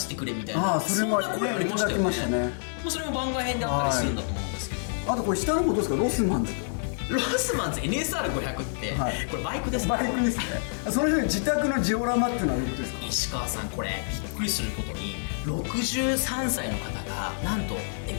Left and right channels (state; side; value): silent; right; digital silence